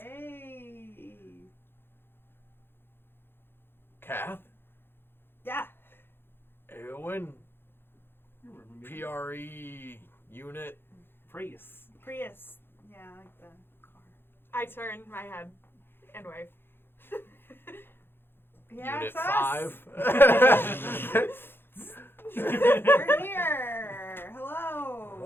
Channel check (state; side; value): late; right; 0.10 ms